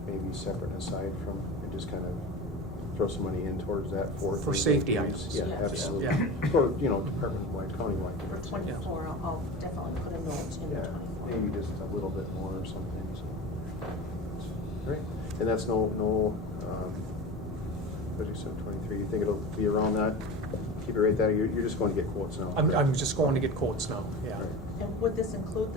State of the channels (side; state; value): both; normal; correlation 0.31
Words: maybe separate and aside from, and just kind of throw some money in towards that for safety items. items. Yeah, Yeah. absolutely. Yeah. Or department-wide, county-wide. For '24, I'll definitely put a note in Yeah, '24. maybe just a little bit more or something. So, great. And that's no. What did you say, 23? You think it'll be around that? Keep it right there. You're just going to get quotes now. I'm just going to get quotes now. Yeah. Right. And would this include